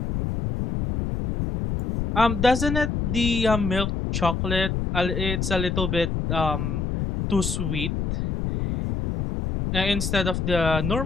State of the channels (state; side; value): noise; left; rumble, 2 dB below the sound